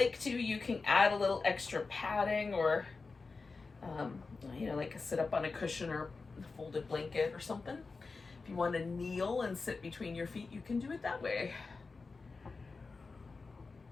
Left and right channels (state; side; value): quieter; right; 4.2 dB